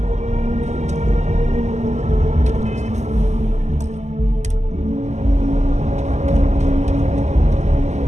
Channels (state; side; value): late; left; 0.33 ms